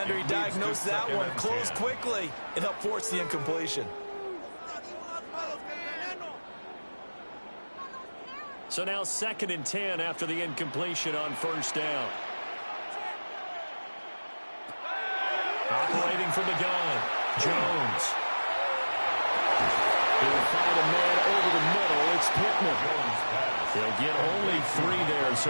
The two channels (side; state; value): both; inverted; correlation -1.00